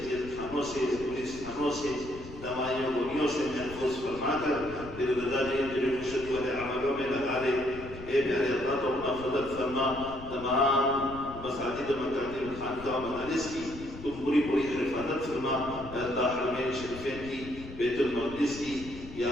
جیل خانوں سے پولیس تھانوں سے دمائیوں گولیوں سے محفوظ فرما کر پھر رضا جی خوشی والے عملوں میں لگا دے. اے پیارے اللہ تو اپنا فضل فرما تمام مساجد مکاتب خانقاہ مدارس کی تم پوری حفاظت فرما. اللہ حرمین شریفین کی بیت المقدس کی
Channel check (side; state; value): left; noise; rumble, 14 dB below the sound